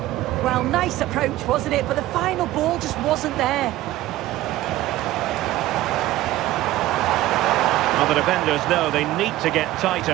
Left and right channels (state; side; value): quieter; left; 15.8 dB